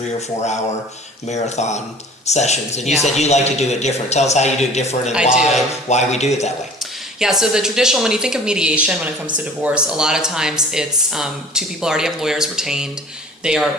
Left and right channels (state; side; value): normal; both; correlation 0.46